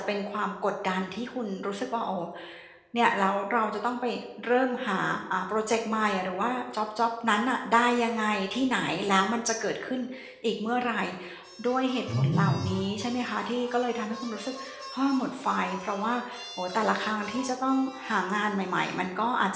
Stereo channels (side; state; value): both; identical; correlation 1.00